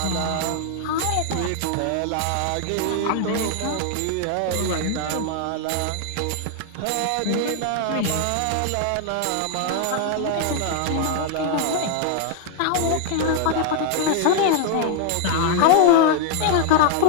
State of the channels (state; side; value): different; both; correlation 0.00